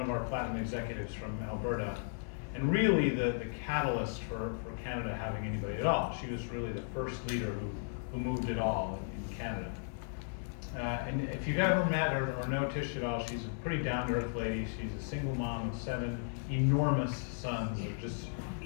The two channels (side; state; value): right; silent; 54 dB below the other